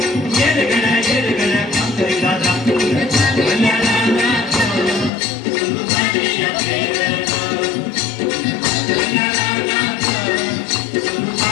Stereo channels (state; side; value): drops out; right; at 5.1 s